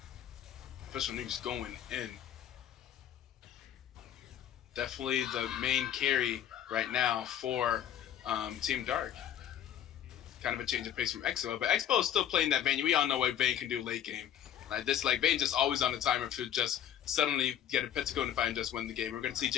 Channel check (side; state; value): right; quieter; 10.2 dB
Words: Official Nuke's going in. Definitely the main carry right now for Team Dark. Kind of a change of pace from Expo, but Expo is still playing that Vayne. We all know what Vayne can do late game. Like this, like Vayne just always on the timer to just suddenly get a Pentacle and fight and just win the game. We're going to see